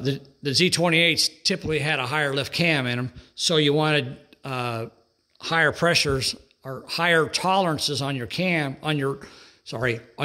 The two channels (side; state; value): both; identical; correlation 1.00